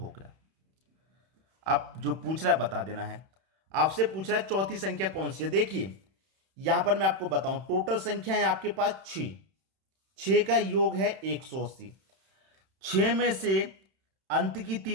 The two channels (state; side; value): late; left; 31 ms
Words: गया। आप जो पूछ रहा है बता देना है। आपसे पूछ रहा है चौथी संख्या कौन सी है। देखिए यहां पर मैं आपको बताऊं, टोटल संख्या है आपके पास 6, 6 का योग है 180। 6 में से अंत की